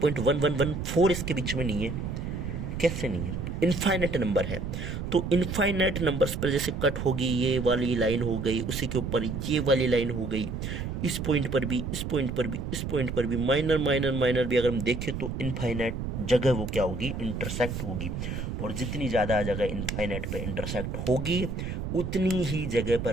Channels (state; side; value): noise; right; rumble, 4 dB below the sound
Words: इसके बीच में नहीं है, कैसे नहीं है, इनफाइनाइट नंबर है। तो इनफाइनाइट नंबर्स पर जैसे कट होगी, ये वाली लाइन हो गई, उसी के ऊपर ये वाली लाइन हो गई, इस पॉइंट पर भी, इस पॉइंट पर भी, इस पॉइंट पर भी, माइनर माइनर माइनर भी अगर हम देखें तो इनफाइनाइट जगह वो क्या होगी, इंटरसेक्ट होगी। और जितनी ज़्यादा जगह इनफाइनाइट पे इंटरसेक्ट होगी, उतनी ही जगह